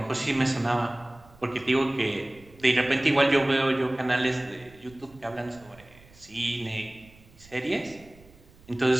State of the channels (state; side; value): noise; right; rumble, 25 dB below the sound